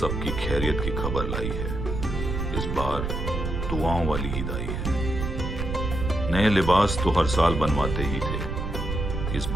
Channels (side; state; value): right; noise; rumble, 3 dB below the sound